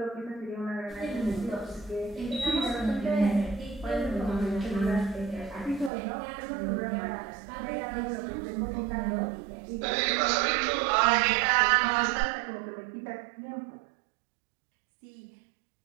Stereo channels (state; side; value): drops out; left; at 5.9 s